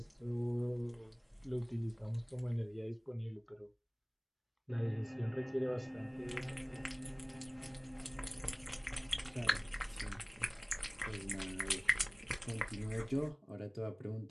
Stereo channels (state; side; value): identical; both; correlation 1.00